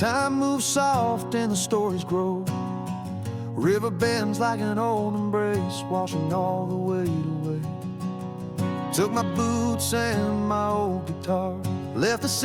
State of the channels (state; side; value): identical; both; correlation 1.00